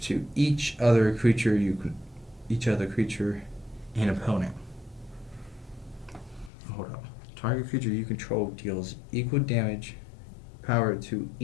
each other creature and opponent. Hold up. Target creature you control deals equal damage power to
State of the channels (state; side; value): drops out; right; at 6.5 s